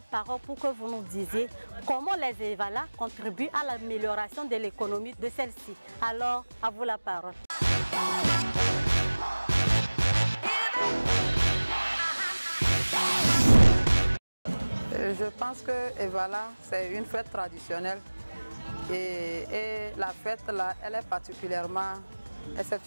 parole pour que vous nous disiez comment les Evala contribuent à l'amélioration de l'économie de celle-ci. Alors, à vous la parole. Je pense que Evala, c'est une fête traditionnelle et la fête là, elle est particulièrement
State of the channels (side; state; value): both; inverted; correlation -1.00